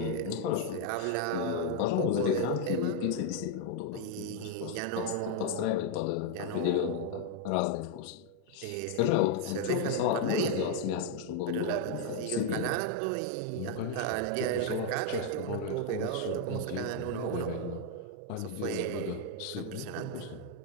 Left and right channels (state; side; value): different; both; correlation 0.00